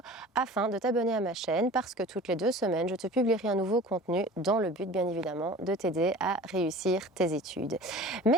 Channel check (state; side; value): normal; both; correlation 0.41